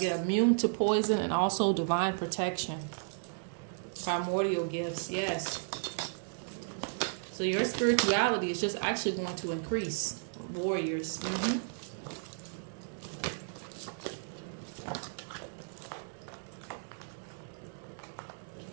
immune to poison and also divine protection. Primordial gifts, yes. So your spirituality is just actually going to increase. Warriors. Let's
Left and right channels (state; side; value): silent; left; digital silence